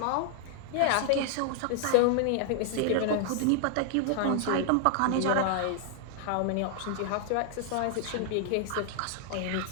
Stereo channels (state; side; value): different; both; correlation 0.00